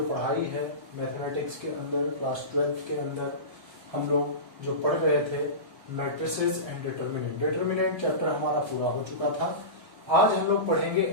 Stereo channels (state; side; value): late; left; 1.2 ms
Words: पढ़ाई है मैथमेटिक्स के अंदर, क्लास 12 के अंदर हम लोग जो पढ़ रहे थे matrices and determinant. Determinant chapter हमारा पूरा हो चुका था। आज हम लोग पढ़ेंगे